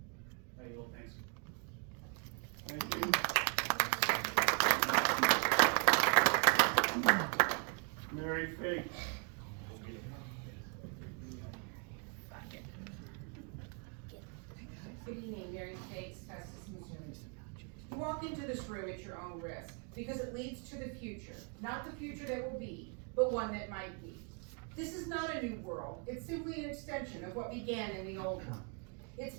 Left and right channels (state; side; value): quieter; left; 37.9 dB